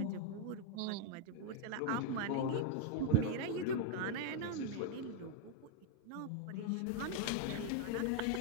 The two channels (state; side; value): different; both; correlation 0.01